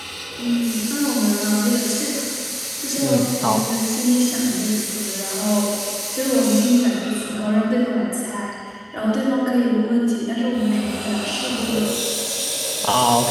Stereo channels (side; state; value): both; identical; correlation 1.00